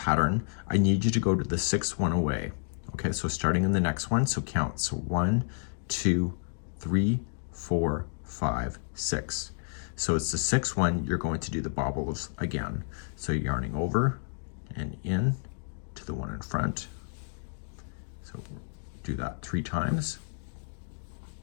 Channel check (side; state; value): right; silent; digital silence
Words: I need you to go to the 6th one away. Okay, so starting in the next one, so count. So 1, 2, 3, 4, 5, 6. So it's the 6th one, you're going to do the bobbles again. So yarning over and in to the one in front. So do that 3 times.